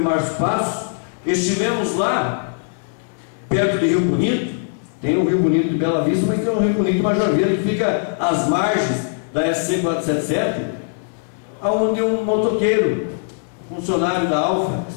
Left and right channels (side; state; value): right; silent; 66 dB below the other